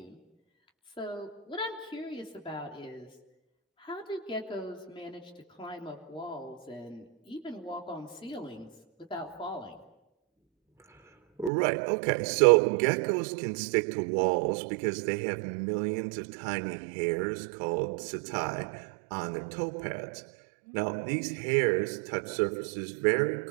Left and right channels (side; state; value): left; drops out; at 11.5 s